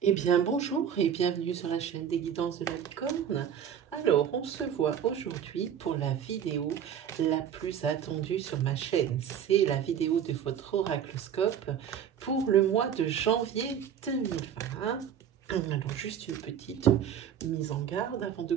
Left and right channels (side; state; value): left; quieter; 8.8 dB